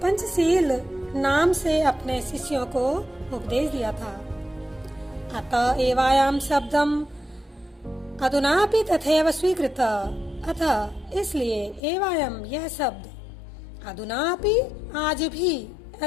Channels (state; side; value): drops out; right; at 11.8 s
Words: नाम से अपने शिष्यों को उपदेश दिया था। अतः एवायाम शब्दम अधुनापि तथैव स्वीकृत। अतः इसलिए एवायम यह शब्द अधुनापि आज भी